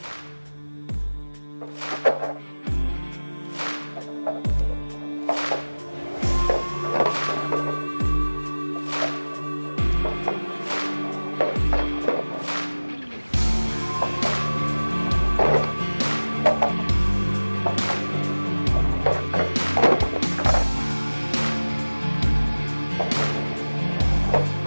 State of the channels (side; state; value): both; inverted; correlation -1.00